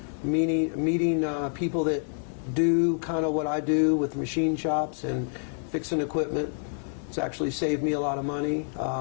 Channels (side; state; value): right; silent; 60 dB below the other